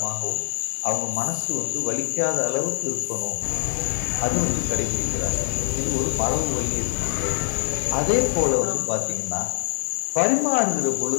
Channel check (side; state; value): right; silent; digital silence